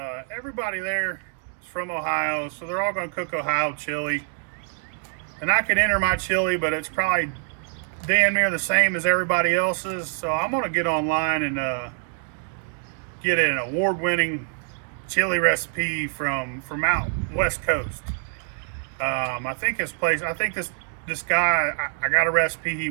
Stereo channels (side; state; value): left; silent; 58 dB below the other